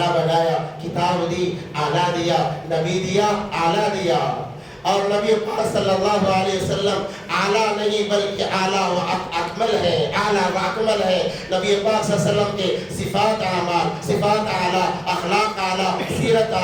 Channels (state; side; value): identical; both; correlation 1.00